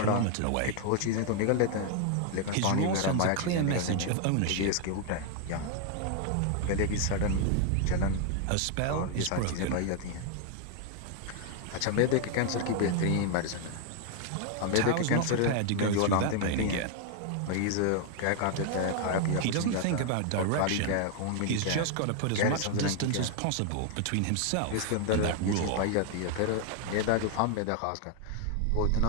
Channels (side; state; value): both; different; correlation 0.00